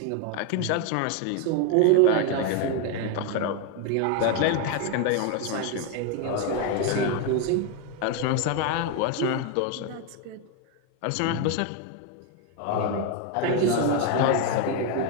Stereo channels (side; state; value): both; different; correlation 0.01